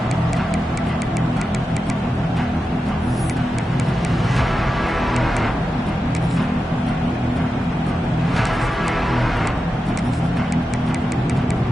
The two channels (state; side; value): normal; both; correlation 0.91